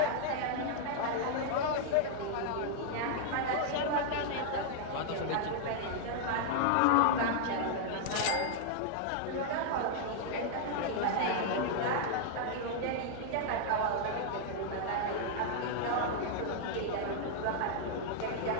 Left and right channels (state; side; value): different; both; correlation -0.01